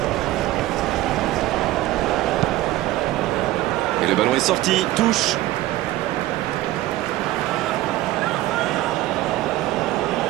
Et le ballon est sorti. Touche.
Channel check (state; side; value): quieter; left; 16.1 dB